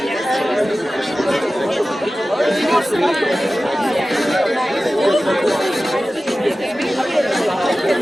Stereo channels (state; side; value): normal; both; correlation 0.95